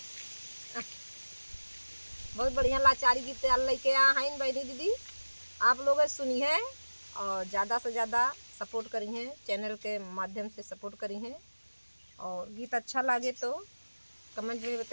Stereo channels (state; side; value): inverted; both; correlation -1.00